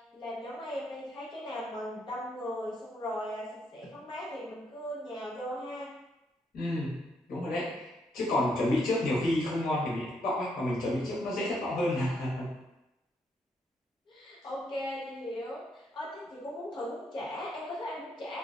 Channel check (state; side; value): normal; both; correlation 0.75